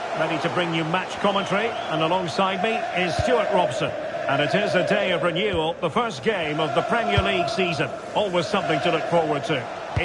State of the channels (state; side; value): identical; both; correlation 1.00